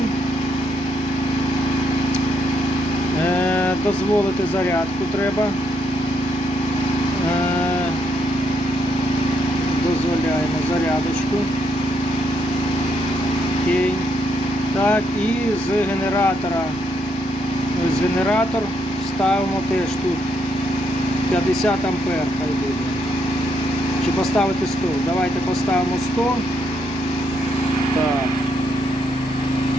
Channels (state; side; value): normal; both; correlation 0.75